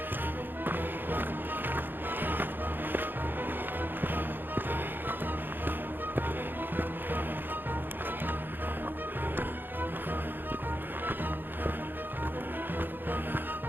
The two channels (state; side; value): late; left; 0.094 ms